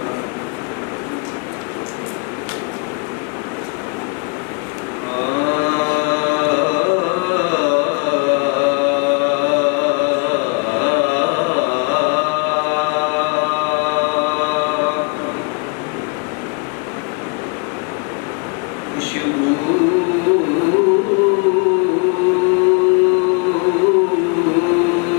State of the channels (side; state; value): right; quieter; 34.5 dB